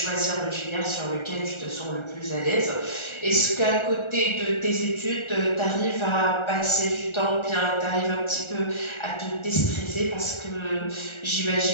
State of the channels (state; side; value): late; right; 1.4 ms